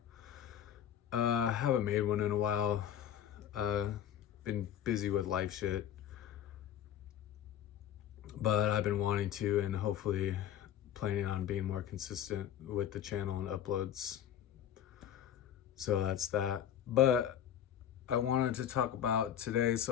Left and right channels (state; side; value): quieter; right; 10.1 dB